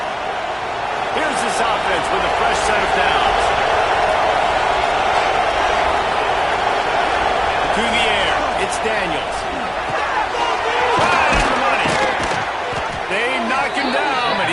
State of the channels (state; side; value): identical; both; correlation 1.00